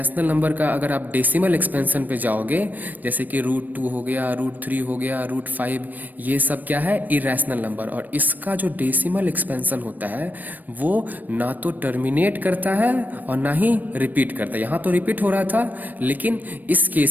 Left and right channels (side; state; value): left; late; 0.086 ms